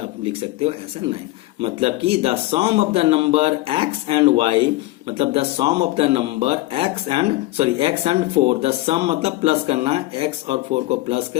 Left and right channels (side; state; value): right; quieter; 18.2 dB